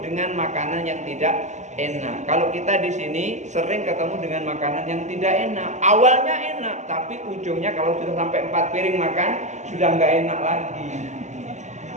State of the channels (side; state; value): left; late; 0.34 ms